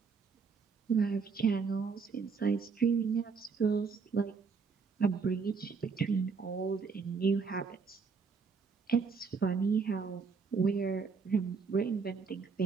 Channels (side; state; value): left; quieter; 5.2 dB